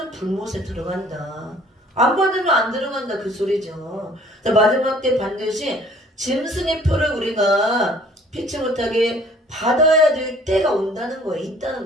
불못에 들어간다. 안 받으면 안 들어간다 그 소리죠. 마지막 때 반드시 짐승의 표를 우리가 피치 못하게 받아야 될 때가 온다는 거예요. 있다는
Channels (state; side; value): normal; both; correlation 0.55